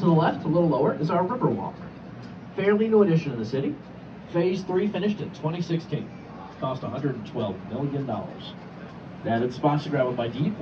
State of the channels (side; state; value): both; identical; correlation 1.00